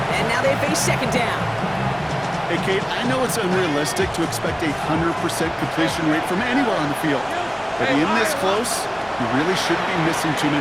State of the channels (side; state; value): both; identical; correlation 1.00